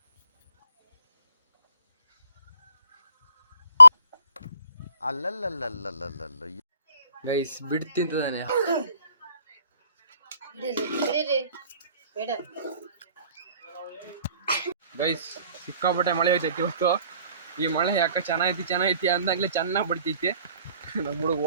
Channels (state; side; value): inverted; both; correlation -0.60